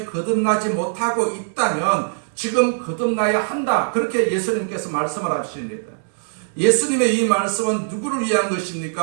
거듭나지 못하고 있다면 지금 거듭나야 한다. 그렇게 예수님께서 말씀을 하십니다. 예수님의 이 말씀은 누구를 위한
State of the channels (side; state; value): left; silent; digital silence